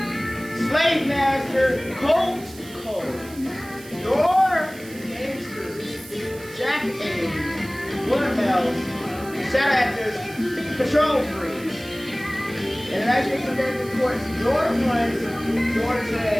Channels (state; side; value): noise; right; hiss, 19 dB below the sound